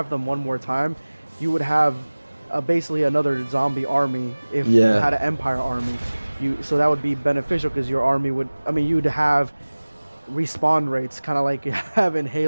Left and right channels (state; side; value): inverted; both; correlation -1.00